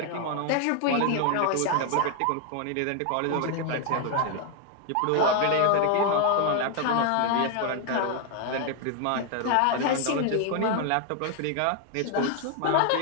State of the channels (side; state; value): both; different; correlation 0.01